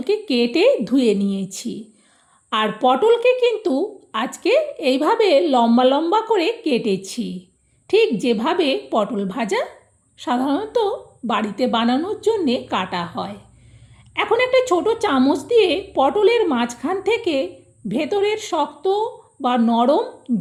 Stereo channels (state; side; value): identical; both; correlation 1.00